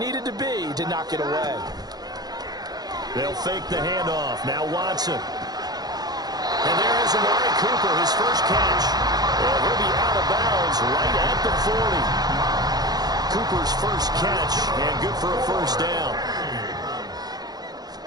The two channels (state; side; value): late; left; 0.19 ms